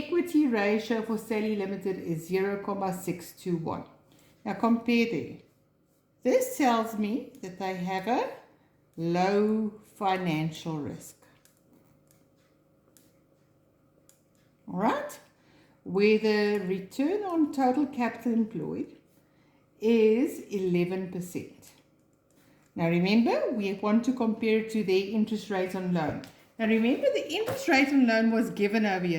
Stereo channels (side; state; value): both; identical; correlation 1.00